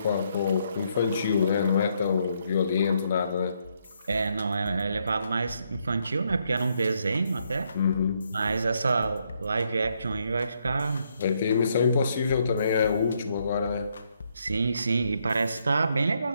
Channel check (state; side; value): inverted; both; correlation -0.75